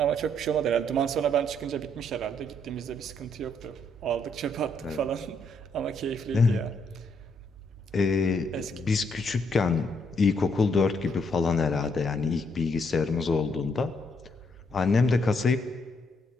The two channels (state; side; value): normal; both; correlation 0.73